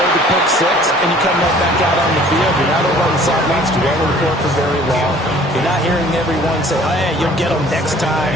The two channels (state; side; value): normal; both; correlation 0.52